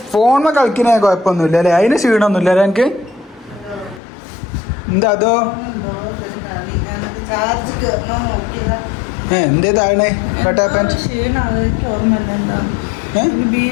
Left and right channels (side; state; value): right; drops out; at 4.0 s